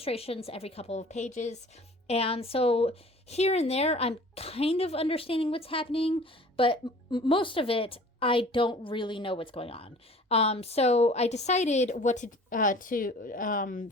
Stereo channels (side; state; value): both; normal; correlation 0.47